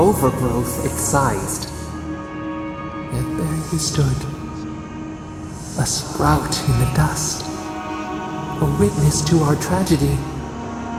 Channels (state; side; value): identical; both; correlation 1.00